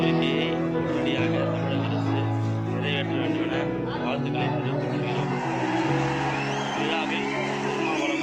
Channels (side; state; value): both; identical; correlation 1.00